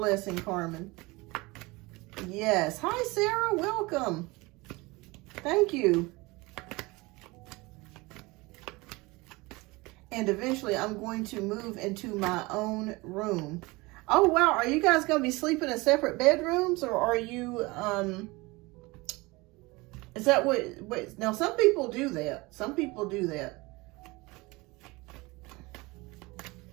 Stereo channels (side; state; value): left; quieter; 23.5 dB